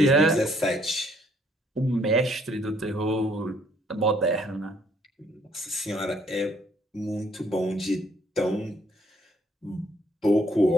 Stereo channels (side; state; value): both; normal; correlation 0.66